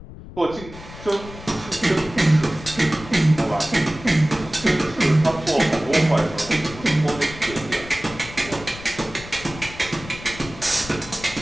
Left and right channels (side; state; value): left; noise; rumble, 15 dB below the sound